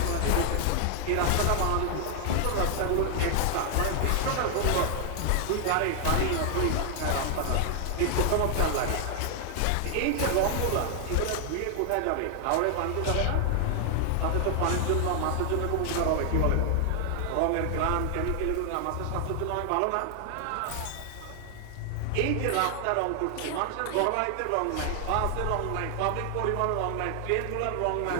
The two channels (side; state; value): both; different; correlation 0.00